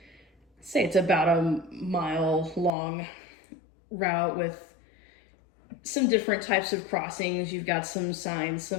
it's about a mile long route with some different types of crossings. You've got some signs,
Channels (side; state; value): right; drops out; at 2.7 s